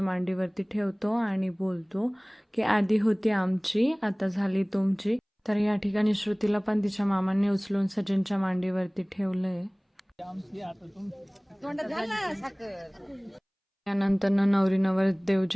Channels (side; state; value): both; identical; correlation 1.00